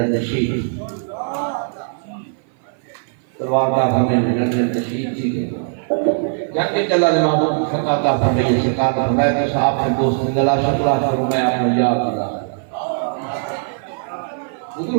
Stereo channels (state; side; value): silent; left; 57 dB below the other